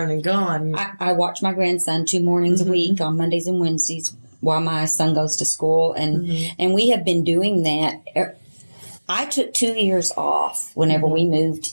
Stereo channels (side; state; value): both; inverted; correlation -1.00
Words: and gone. I watch my grandson 2 mornings a week on Mondays and Wednesdays while my son goes to school, and we have been doing that. I took 2 years off whenever we moved